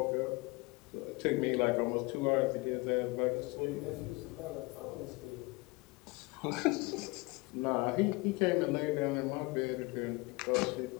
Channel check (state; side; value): quieter; right; 25.3 dB